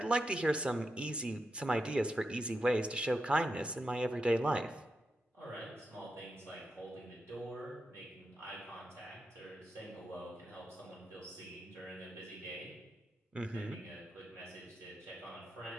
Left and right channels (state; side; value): normal; both; correlation 0.86